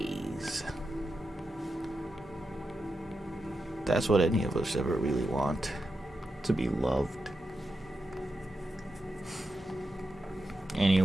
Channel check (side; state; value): both; normal; correlation 0.88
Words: That's what any of us ever really want, to be loved.